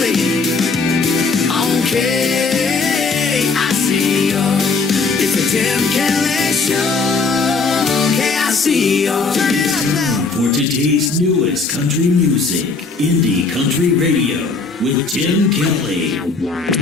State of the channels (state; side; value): quieter; right; 4.3 dB